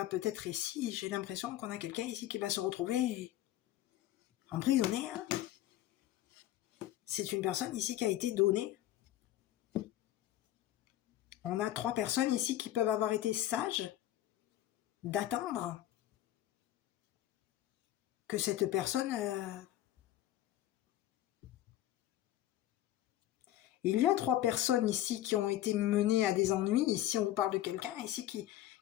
peut-être ici, j'ai l'impression qu'on a quelqu'un ici qui va se retrouver emprisonné. Hein. C'est une personne ici qui a été donnée. On a 3 personnes ici qui peuvent avoir été sages d'attendre que cette personne... Il y a 3 personnes ici qui ont été menées à des ennuis. Ici, on vous parle de quelqu'un ici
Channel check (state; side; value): quieter; right; 13.7 dB